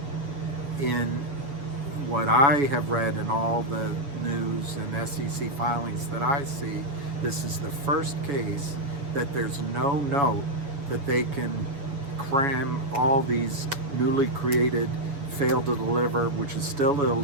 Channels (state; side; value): late; left; 7.1 ms